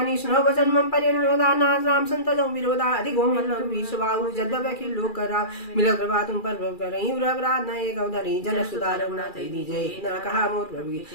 सुनो वचन मम परिरोधा नाथ राम संत जो विरोधा अधिक होम लघु सुबाहु जद्दव की लोक करा मिल कृपा तुम पर प्रभु करई उरवराध न एक अवधरी जन सुधार रघुनाथ दीजय न कहा मोर प्रभु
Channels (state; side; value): late; right; 2.4 ms